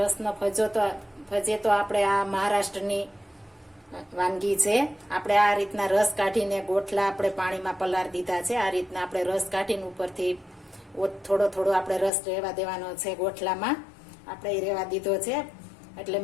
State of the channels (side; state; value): right; drops out; at 12.1 s